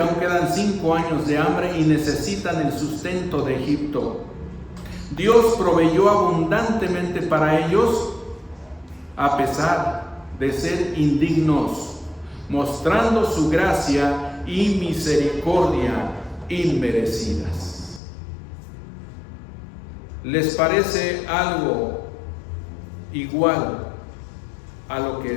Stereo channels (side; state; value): right; drops out; at 18.0 s